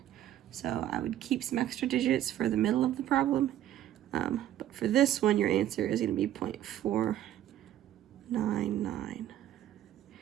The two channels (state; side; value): quieter; left; 12.2 dB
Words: So I would keep some extra digits for the middle of the problem. But for this one, your answer is going to be 0.499.